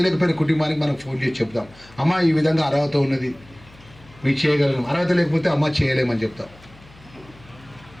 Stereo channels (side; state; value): left; noise; hum, 24 dB below the sound